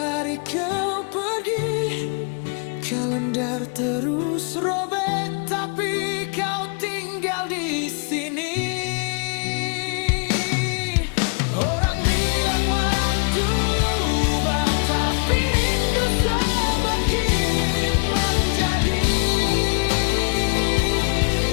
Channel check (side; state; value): right; quieter; 38.4 dB